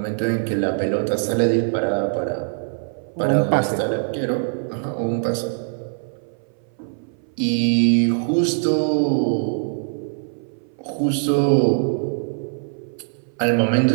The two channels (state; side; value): silent; left; 59 dB below the other